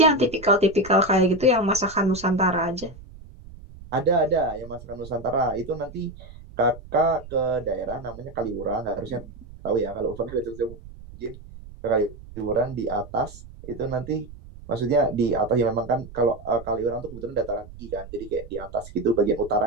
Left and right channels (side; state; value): right; noise; rumble, 17 dB below the sound